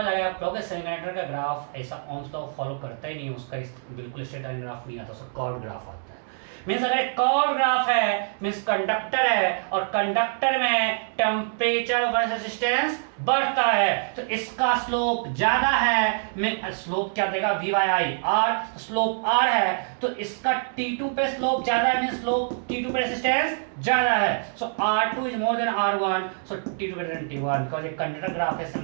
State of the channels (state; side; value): silent; left; digital silence